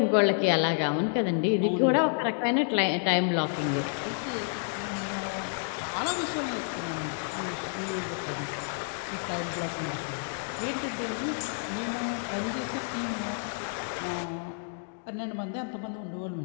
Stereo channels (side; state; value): right; silent; digital silence